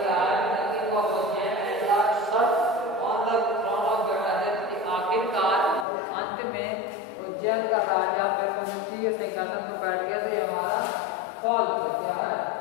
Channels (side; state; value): right; drops out; at 5.9 s